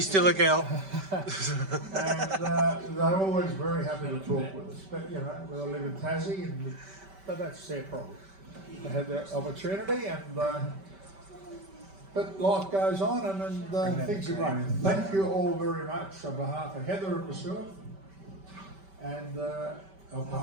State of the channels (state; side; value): late; left; 5.2 ms